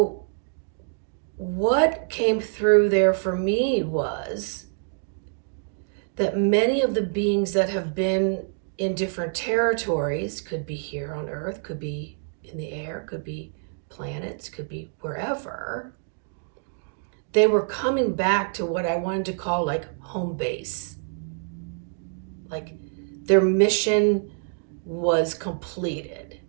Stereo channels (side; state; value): left; silent; 61 dB below the other